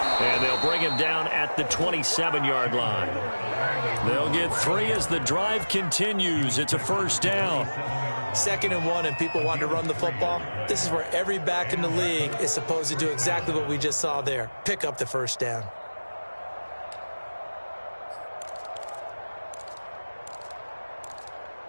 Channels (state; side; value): inverted; both; correlation -1.00